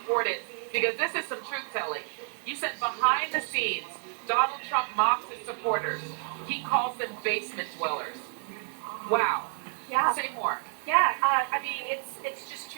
it because this is some truth telling. You said behind the scenes, Donald Trump mocks his supporters. He calls them basement dwellers. Wow. Yeah. Say more. Yeah, I mean, it's just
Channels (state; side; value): silent; left; 58 dB below the other